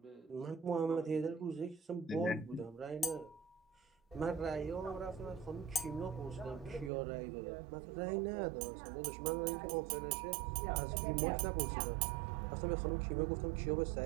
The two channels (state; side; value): drops out; left; at 6.9 s